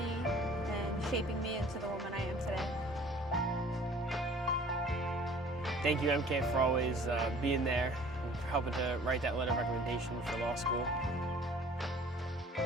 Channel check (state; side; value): normal; both; correlation 0.50